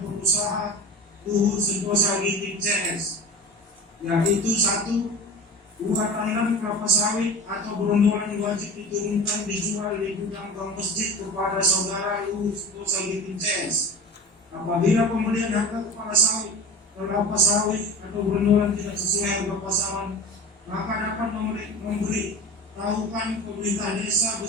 Luhur Sentosa Giting CS, yaitu 1. Buah tanam kelapa sawit atau berondolan wajib diturunkan dijual di gudang bank masjid kepada saudara Luhur Sentosa Giting CS. Apabila pembelian harga kepala sawit, kelapa sawit atau berondolan tidak sesuai harga pasaran, maka dapat memberi tahukan pemerintah desa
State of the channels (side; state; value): both; normal; correlation 0.33